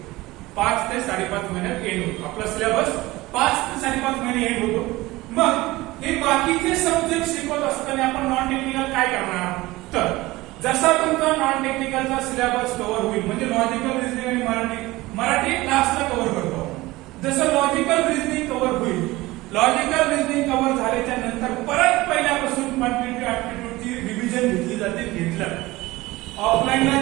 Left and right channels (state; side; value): quieter; left; 19.6 dB